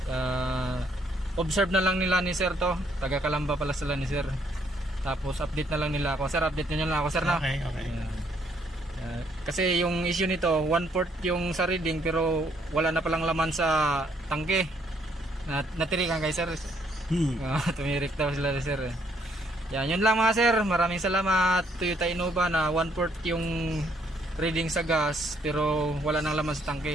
Observe na lang nila ni sir to. Taga Kalamba pala sila ni sir. Tapos update na lang nila ako. Sir, update niyo lang ako sir na. Okay. Kasi yung issue nito, 1/4 yung sa reading pero wala na palang laman sa tangke. Natirikan kay sir. Tumirik daw sila sir. Yan, yun lang mga sir. Maraming salamat. Toyota Innova na 1/4 yung reading sa gas pero wala nang laman sa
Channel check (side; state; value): both; normal; correlation 0.69